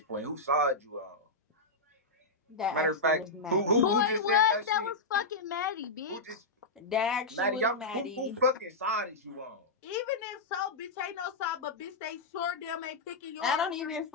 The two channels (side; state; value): right; quieter; 3.1 dB